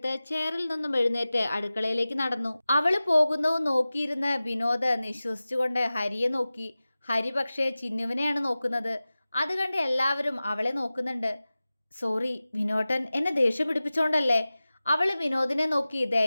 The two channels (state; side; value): inverted; both; correlation -0.97